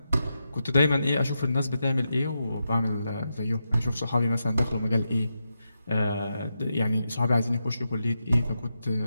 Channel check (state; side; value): inverted; both; correlation -0.86